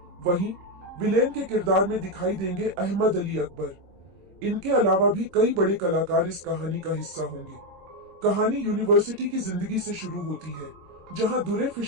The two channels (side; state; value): left; late; 26 ms